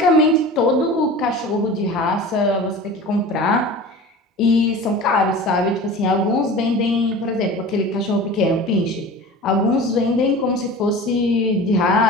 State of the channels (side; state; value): both; normal; correlation 0.36